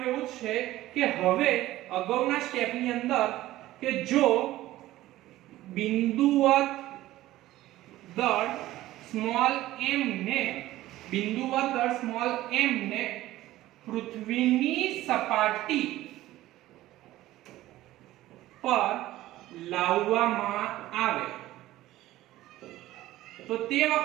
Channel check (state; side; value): quieter; left; 15.7 dB